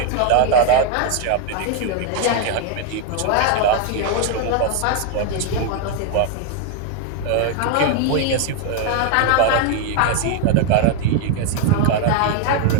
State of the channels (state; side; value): different; both; correlation 0.01